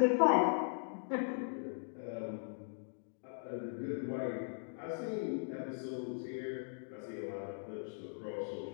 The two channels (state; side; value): silent; right; digital silence